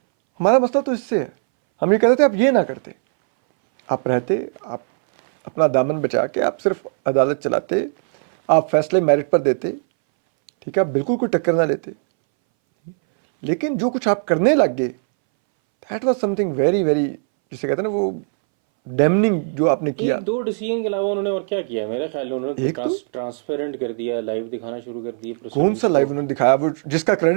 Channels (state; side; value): silent; left; 63 dB below the other